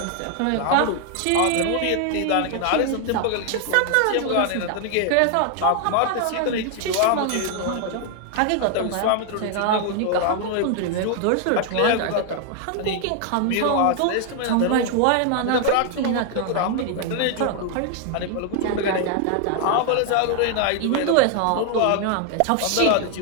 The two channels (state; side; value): different; both; correlation 0.00